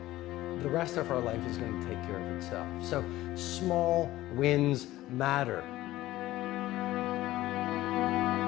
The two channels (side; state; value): right; quieter; 16.1 dB